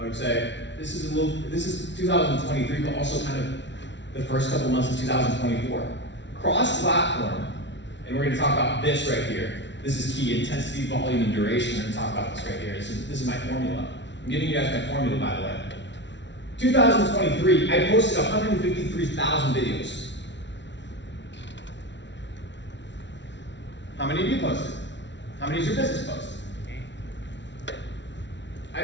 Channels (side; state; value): right; late; 0.52 ms